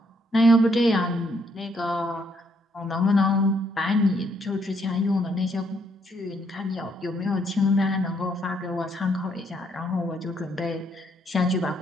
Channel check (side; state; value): both; normal; correlation 0.72